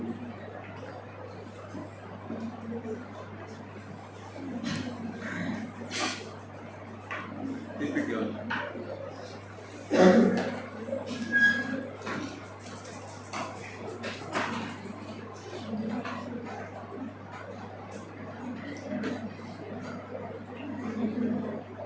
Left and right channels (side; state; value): both; identical; correlation 1.00